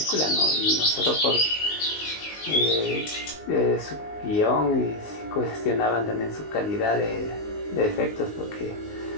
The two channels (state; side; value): late; right; 19 ms